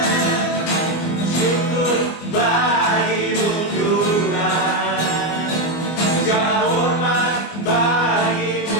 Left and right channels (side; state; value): right; late; 24 ms